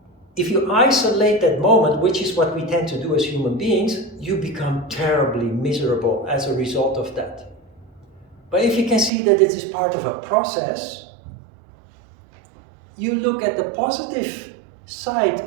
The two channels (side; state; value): left; drops out; at 9.1 s